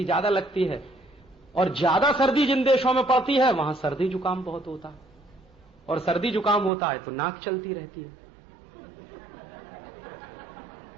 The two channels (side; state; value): left; drops out; at 6.7 s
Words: ज्यादा लगती है, और ज्यादा सर्दी जिन देशों में पड़ती है वहां सर्दी जुकाम बहुत होता है, और सर्दी जुकाम होता है तो नाक चलती रहती है।